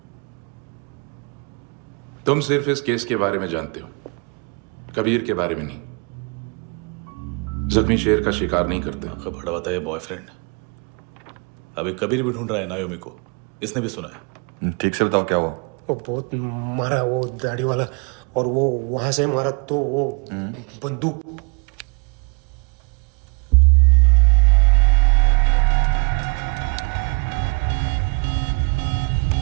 तुम सिर्फ इस केस के बारे में जानते हो, कबीर के बारे में नहीं। जख्मी शेर का शिकार नहीं करते। बड़ा बताया बॉयफ्रेंड अभी कबीर भी ढूंढ रहा है नायोमी को, इसने भी सुना है। ठीक से बताओ क्या हुआ? वो बहुत मारा, वो दाढ़ी वाला, और वो वहां से मारा तो वो बंदूक।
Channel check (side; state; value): left; quieter; 34.3 dB